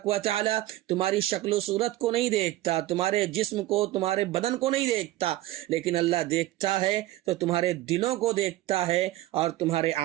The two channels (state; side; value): quieter; left; 16.2 dB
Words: و تعالی تمہاری شکل و صورت کو نہیں دیکھتا, تمہارے جسم کو, تمہارے بدن کو نہیں دیکھتا, لیکن اللہ دیکھتا ہے تو تمہارے دلوں کو دیکھتا ہے اور تمہارے